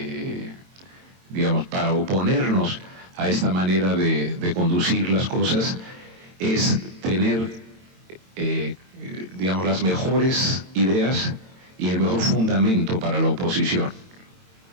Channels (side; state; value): left; late; 22 ms